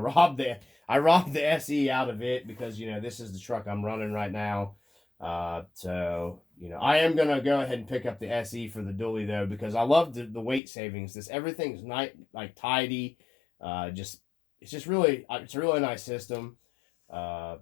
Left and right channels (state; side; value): drops out; right; at 10.6 s